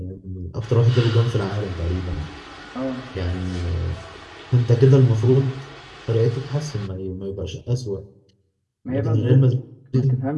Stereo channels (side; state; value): both; identical; correlation 1.00